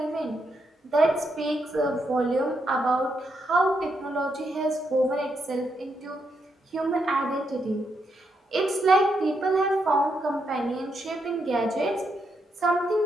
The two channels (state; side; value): normal; both; correlation 0.80